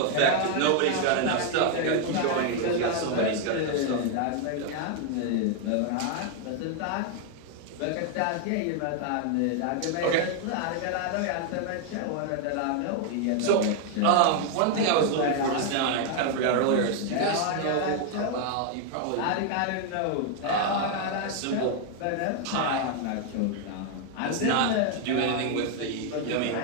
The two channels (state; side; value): different; both; correlation 0.00